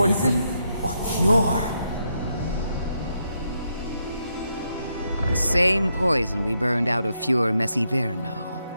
or cure? The same poison we burned out of Fior Messiverno.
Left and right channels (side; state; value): both; inverted; correlation -0.80